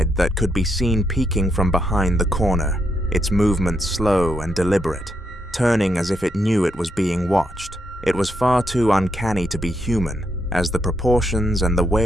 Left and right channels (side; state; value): both; normal; correlation 0.80